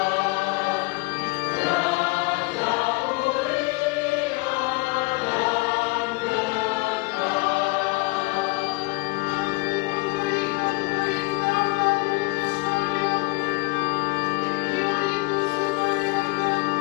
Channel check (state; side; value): quieter; right; 25.6 dB